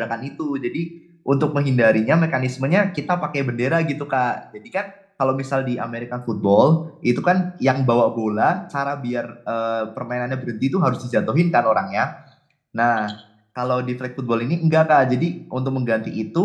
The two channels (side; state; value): both; identical; correlation 1.00